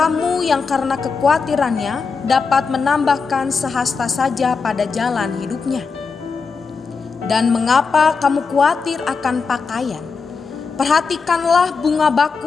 yang karena kekhawatirannya dapat menambahkan sehasta saja pada jalan hidupnya? Dan mengapa kamu khawatir akan pakaian? Perhatikanlah bunga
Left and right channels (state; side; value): quieter; right; 5.0 dB